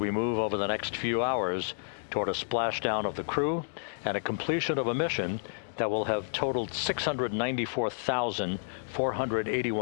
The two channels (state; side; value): silent; right; digital silence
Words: move over the next few hours toward a splashdown of the crew and a completion of a mission that will have totaled